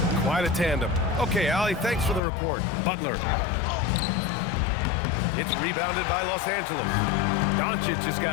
Quite a tandem. Okay, Allie, thanks for the report. Butler. It's rebounded by Los Angeles. Doncic has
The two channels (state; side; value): drops out; right; at 2.2 s